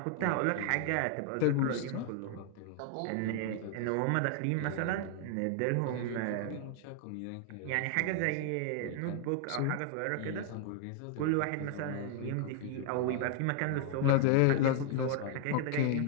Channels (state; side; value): different; both; correlation 0.00